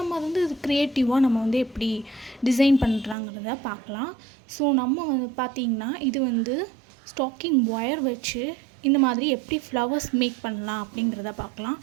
அது வந்து இது க்ரியேட்டிவாக நம்ம வந்து எப்படி டிசைன் பண்ணுறாங்கிறத பார்க்கலாம். ஸோ நம்ம வந்து பார்த்திங்கன்னா, இது வந்து ஸ்டாக்கிங் ஒயர் வச்சு இந்த மாதிரி எப்படி ஃப்ளவர்ஸ் மேக் பண்ணலாம் அப்படிங்கிறத பார்க்கலாம்.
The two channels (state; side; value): drops out; left; at 3.2 s